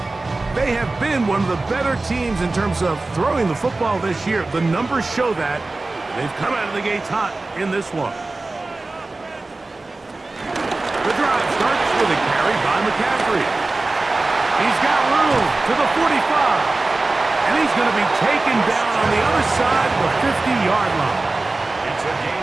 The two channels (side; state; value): left; quieter; 3.2 dB